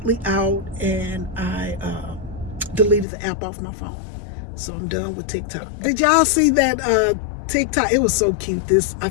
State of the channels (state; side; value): drops out; right; at 3.1 s